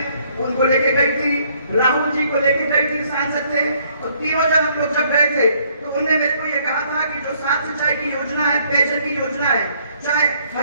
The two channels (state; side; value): inverted; both; correlation -0.65